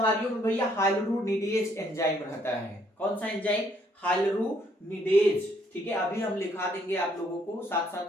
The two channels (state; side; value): normal; both; correlation 0.68